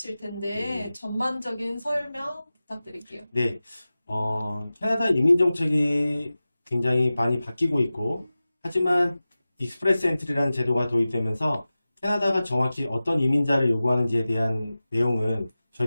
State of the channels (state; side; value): inverted; both; correlation -0.96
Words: 텐데 네. 전반적인 설명 부탁드릴게요. 네, 캐나다 이민 정책이 굉장히 많이 바뀌고 있고, 하지만 익스프레스 엔트리라는 제도가 도입되면서 캐나다가 정확히 어떤 이민자를 요구하는지에 대한 내용은